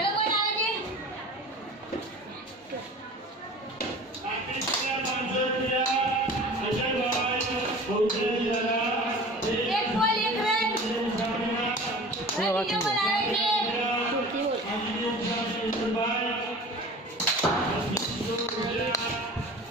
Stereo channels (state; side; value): normal; both; correlation 0.40